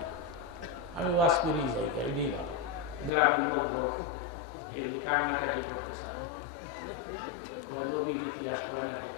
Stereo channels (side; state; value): right; drops out; at 3.1 s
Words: না, আমি ওয়াজ করি যাই। গ্রামের লোকজন এগুলি কান্নাকাটি করতে চান, নবীর ইতিহাস করে না,